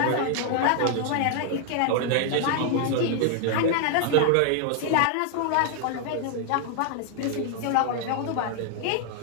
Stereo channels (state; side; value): different; both; correlation 0.00